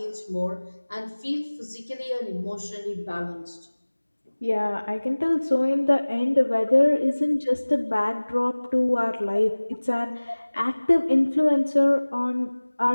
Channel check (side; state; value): both; inverted; correlation -1.00